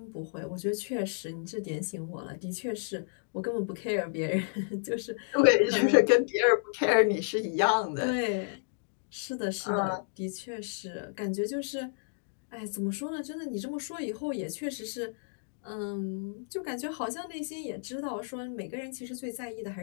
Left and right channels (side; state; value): right; silent; digital silence